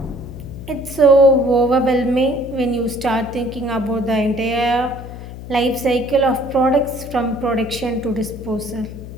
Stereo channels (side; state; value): left; noise; hum, 12 dB below the sound